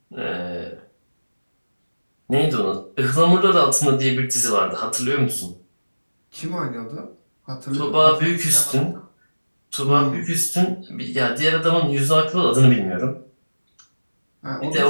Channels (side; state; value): both; inverted; correlation -1.00